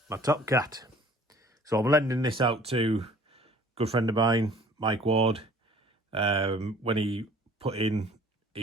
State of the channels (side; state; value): both; normal; correlation 0.52